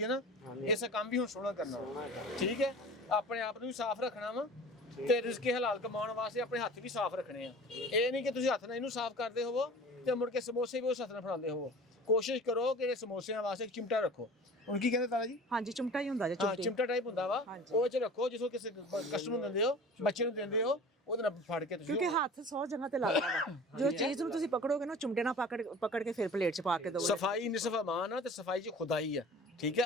ਹੈ ਨਾ, ਹਾਂਜੀ। ਇਸੇ ਕੰਮ ਵੀ ਹੁਣ ਸੋਹਣਾ ਕਰਨਾ ਵਾ। सोहना है। ਠੀਕ ਹੈ, ਆਪਣੇ ਆਪ ਨੂੰ ਵੀ ਸਾਫ਼ ਰੱਖਣਾ ਵਾ ਤੇ ਰਿਜ਼ਕੇ ਹਲਾਲ ਕਮਾਉਣ ਵਾਸਤੇ ਆਪਣੇ ਹੱਥ ਵੀ ਸਾਫ਼ ਰੱਖਣੇ ਆ। ਇਹ ਨਹੀਂ ਕਿ ਤੁਸੀਂ ਹੱਥ ਨਾਲ ਇਹਨੂੰ ਸਾਫ਼ ਕਰਦੇ ਹੋਵੋ ਤੇ ਮੁੜ ਕੇ ਸਮੋਸੇ ਵੀ ਉਸ ਹੱਥ ਨਾਲ ਫੜਾਉਂਦੇ ਹੋਵੋ। ਕੋਸ਼ਿਸ਼ ਕਰੋ ਕਿ ਇਹ ਸਮੋਸਿਆਂ ਵਾਸਤੇ ਇੱਕ ਚਿਮਟਾ ਰੱਖੋ। ਹੁਣ ਕੀ ਕਹਿੰਦੇ ਤਾਰਾ ਜੀ? ਹਾਂਜੀ, ਚਿਮਟਾ ਹੀ ਹੁੰਦਾ ਜੇ ਹਾਂ, ਚਿਮਟੀ। ਚਿਮਟਾ ਟਾਈਪ ਹੁੰਦਾ ਵਾ, ਹਾਂਜੀ। ਉਹ ਚ ਰੱਖੋ ਜਿਸੋ ਕਿਸੇ ਕਸਟਮਰ ਨੂੰ ਦਿੰਦੇ ਹੋ, ਬੱਚੇ ਨੂੰ ਦਿੰਦੇ ਹੋ, ਉਹਦੇ ਨਾਲ ਫੜ ਕੇ ਤੁਸੀਂ। ਕਿਉਂਕਿ ਹੱਥ 100 ਜਗ੍ਹਾ ਤੇ ਲੱਗਦਾ ਵਾ। ਜੋ ਚੀਜ਼ ਨੂੰ ਤੁਸੀਂ ਪਕੜੋਗੇ ਨਾ ਚਿਮਟੇ ਨਾਲ ਪਕੜ ਕੇ ਫਿਰ ਪਲੇਟ 'ਚ ਪਾ ਕੇ ਦਿਓ। ਸਫਾਈ ਨਿਸਫ ਅਮਾਨ ਆ ਤੇ ਸਫਾਈ 'ਚ ਖੁਦਾਈ ਆ। ਠੀਕ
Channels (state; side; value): normal; both; correlation 0.41